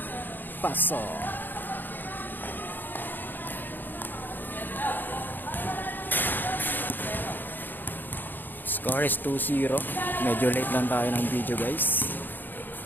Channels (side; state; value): right; late; 0.091 ms